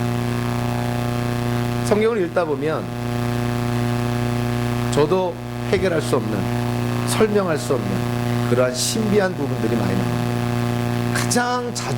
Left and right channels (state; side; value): identical; both; correlation 1.00